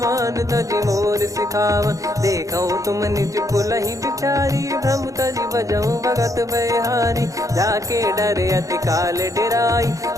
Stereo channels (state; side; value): late; left; 0.16 ms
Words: तजि मोर सिखावन। देखऊं तुम निज कुलहि बिचारी, भ्रम तजि बजऊं भगत बयहारी। जाके डरे अति काल डेराई,